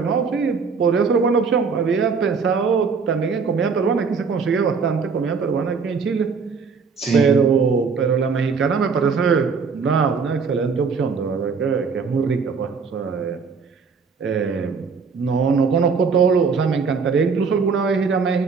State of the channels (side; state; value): left; quieter; 5.3 dB